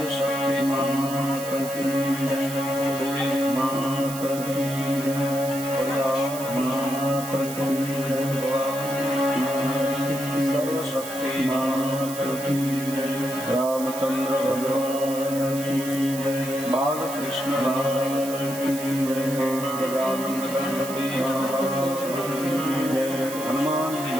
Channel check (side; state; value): right; noise; hiss, 10 dB below the sound